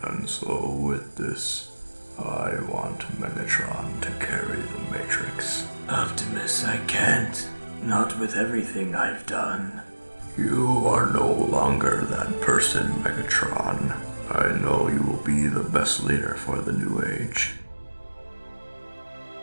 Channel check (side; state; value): both; inverted; correlation -1.00